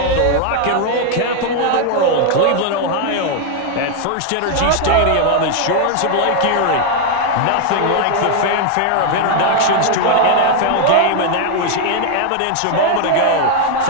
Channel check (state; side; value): different; both; correlation 0.00